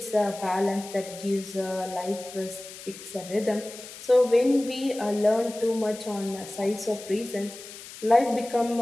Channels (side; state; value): left; noise; hiss, 15 dB below the sound